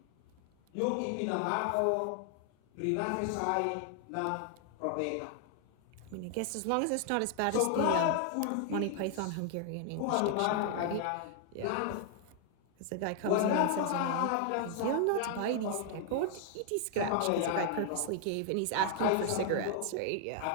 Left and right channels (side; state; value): both; different; correlation 0.00